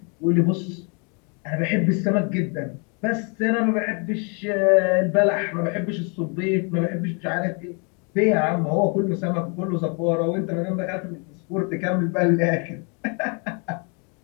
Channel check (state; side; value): quieter; right; 35.8 dB